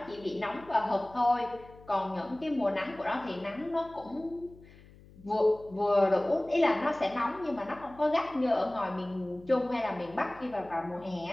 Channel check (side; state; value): left; noise; hum, 23 dB below the sound